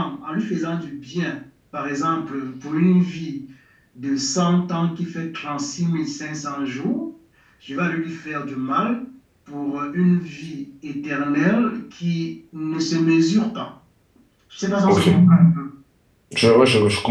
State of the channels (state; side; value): identical; both; correlation 1.00